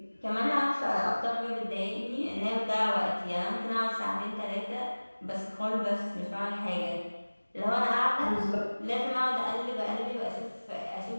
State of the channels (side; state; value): both; inverted; correlation -1.00